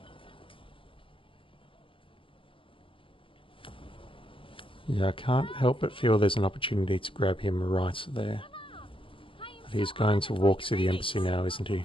Yeah, I can't help but feel there's an opportunity to grab him right there. But he's going to walk to the embassy now, isn't he?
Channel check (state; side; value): late; right; 0.25 ms